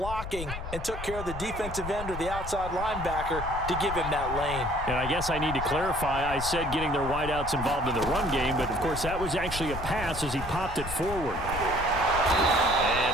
and took care of the defensive end or the outside linebacker to give him that lane. And I guess I need to clarify, I said getting their wideouts involved in the run game, but of course that was actually a pass as he popped it forward.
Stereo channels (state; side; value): noise; left; rumble, 8 dB below the sound